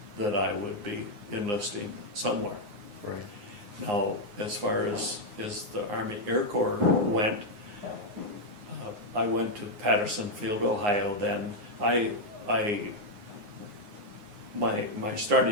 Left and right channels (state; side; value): late; left; 9.7 ms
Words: that I would be enlisting somewhere. Right. Now, as far as the Army Air Corps went, I went to Patterson Field, Ohio. Then my